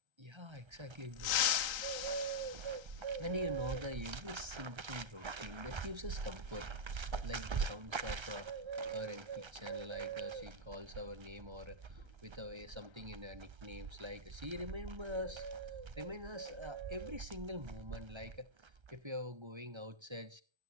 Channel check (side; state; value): left; late; 1.3 ms